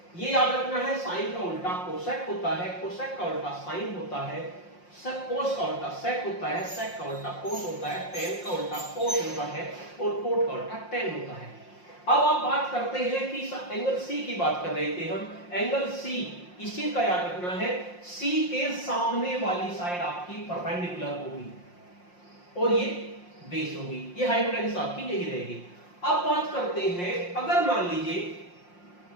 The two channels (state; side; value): late; right; 5.6 ms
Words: ये याद रखना है, साइन का उल्टा कोसेक होता है, कोसेक का उल्टा साइन होता है, कोस का उल्टा सेक होता है, सेक का उल्टा कोस होता है, टेन का उल्टा कोट होता है, और कोट का उल्टा टेन होता है। अब आप बात करते हैं कि एंगल C की बात कर रहे थे हम, एंगल C, इस चीज का याद रखना है, C के सामने वाली साइड आपकी परपेंडिकुलर होगी और ये बेस होगी, ये हाइपोटेन्यूस आपकी यही रहेगी। अब बात करते हैं, अगर मान लीजिए